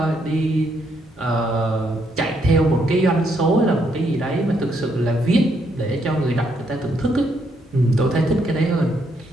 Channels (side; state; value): both; normal; correlation 0.75